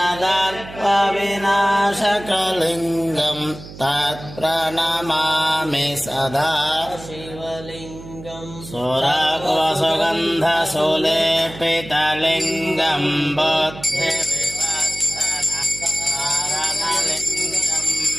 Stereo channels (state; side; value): noise; right; hum, 15 dB below the sound